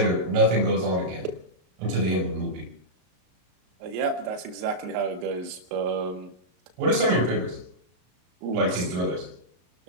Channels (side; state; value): left; late; 33 ms